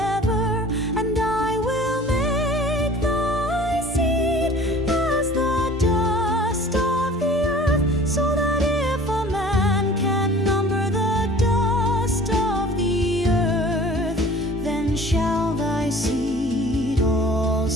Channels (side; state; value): both; normal; correlation 0.46